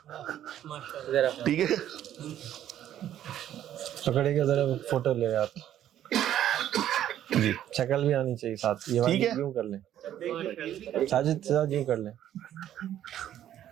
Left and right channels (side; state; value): left; quieter; 11.4 dB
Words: ٹھیک ہے, پکڑے گا ذرا فوٹو لے آپ, جی شکل بھی آنی چاہیے ساتھ. یہ ٹھیک ہے, یوں کر لیں ساجد صاحب, یوں کر لیں.